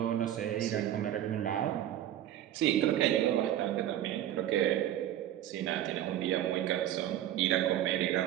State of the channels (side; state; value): left; quieter; 12.0 dB